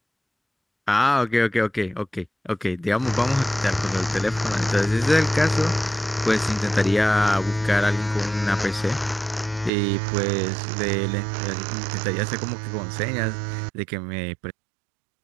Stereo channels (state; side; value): drops out; left; at 9.7 s